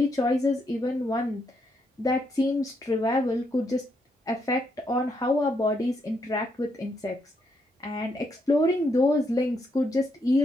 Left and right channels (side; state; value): both; normal; correlation 0.77